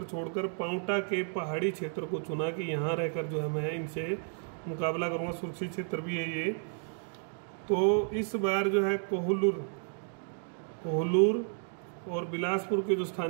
छोड़कर पांवटा के पहाड़ी क्षेत्र को चुना कि यहाँ रहकर जो है मैं इनसे मुकाबला करूँगा, सुरक्षित क्षेत्र भी है ये। तो इस बार जो है कोहलूर और बिलासपुर के जो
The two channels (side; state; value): left; silent; 56 dB below the other